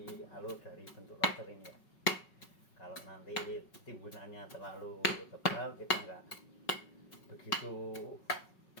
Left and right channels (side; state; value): right; late; 5.4 ms